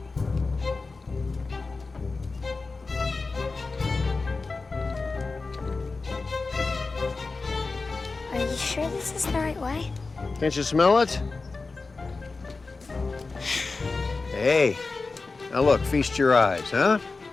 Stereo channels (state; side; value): quieter; right; 3.9 dB